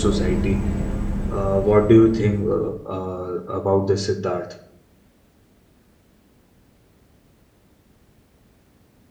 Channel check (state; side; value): identical; both; correlation 1.00